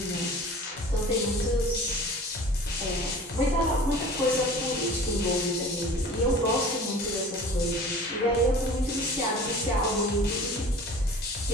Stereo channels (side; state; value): both; normal; correlation 0.42